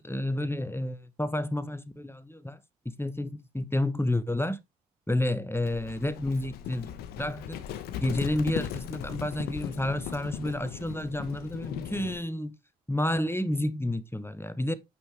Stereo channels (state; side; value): normal; both; correlation 0.87